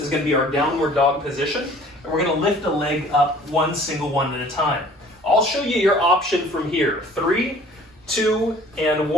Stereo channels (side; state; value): both; normal; correlation 0.51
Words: going to be our downward dog position, and we're going to lift a leg up one single one at a time. I'll show you your option from here. 3, 2, and